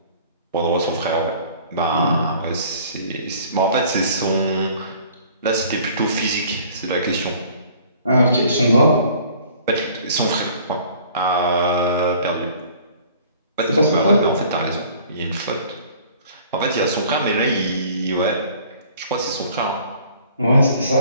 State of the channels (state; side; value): inverted; both; correlation -0.52